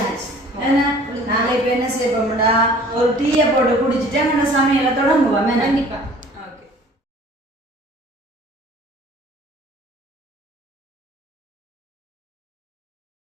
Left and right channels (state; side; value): normal; both; correlation 0.50